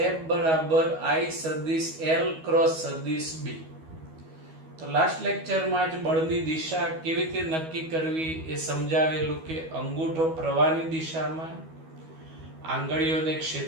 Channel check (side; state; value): left; late; 12 ms